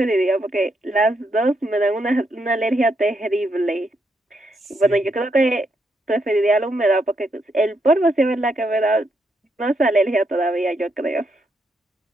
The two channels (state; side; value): normal; both; correlation 0.79